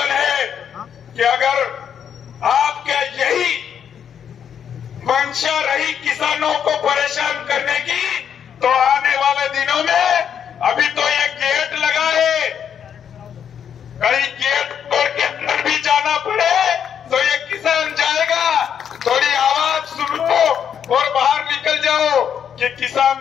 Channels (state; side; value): quieter; right; 8.3 dB